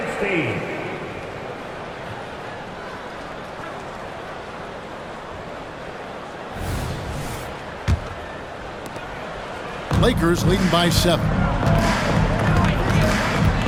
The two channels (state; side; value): identical; both; correlation 1.00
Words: Lakers leading by 7.